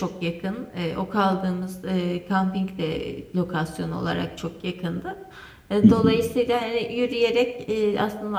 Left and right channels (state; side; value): identical; both; correlation 1.00